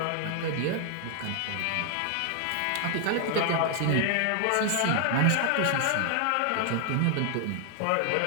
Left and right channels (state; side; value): different; both; correlation 0.00